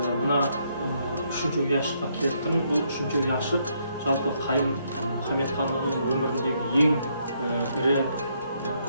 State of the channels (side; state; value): both; inverted; correlation -0.73